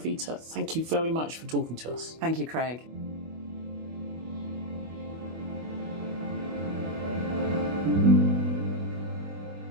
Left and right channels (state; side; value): late; left; 24 ms